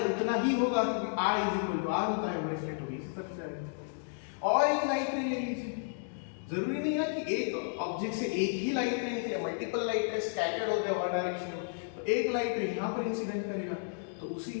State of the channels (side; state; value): right; silent; digital silence